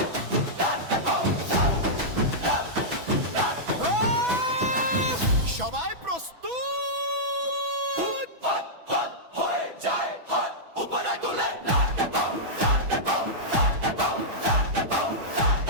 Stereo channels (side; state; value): left; late; 6.1 ms